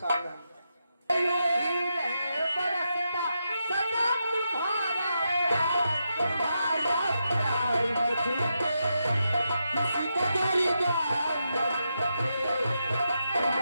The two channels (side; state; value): both; inverted; correlation -0.85